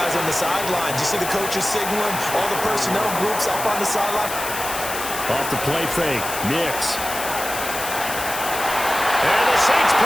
on the sideline? You see the coaches signaling, all the personnel groups up on the sideline? Off the play fake, Nix. And the Saints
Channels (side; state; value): left; noise; hiss, 7 dB below the sound